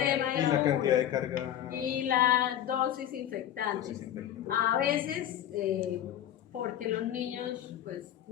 y la cantidad de carga y la dosis infectante. A veces porque los niños pues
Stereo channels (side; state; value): right; quieter; 11.2 dB